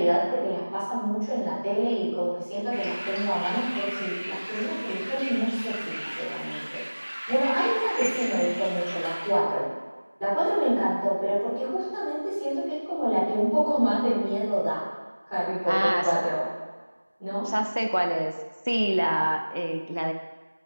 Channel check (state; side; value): inverted; both; correlation -1.00